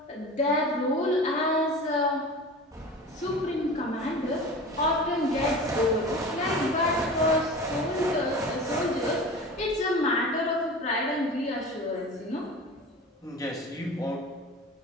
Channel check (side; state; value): both; normal; correlation 0.35